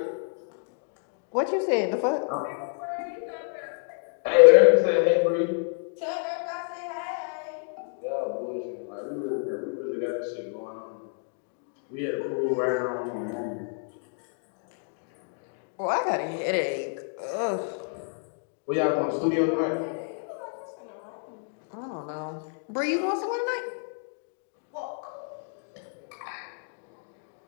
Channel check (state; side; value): silent; right; 59 dB below the other